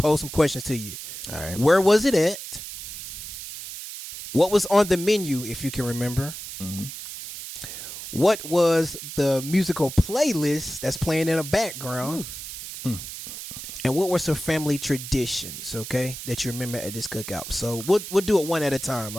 some questions to you. All right. Where was it at? What was on the menu, if you can remember? What was the musical playlist that's playing in the background? And what were some family traditions, okay, that you remember at this cookout? So we'll do it one at a time,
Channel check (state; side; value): noise; right; hiss, 10 dB below the sound